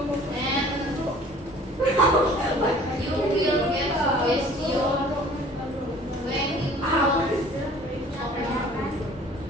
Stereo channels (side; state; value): both; normal; correlation 0.50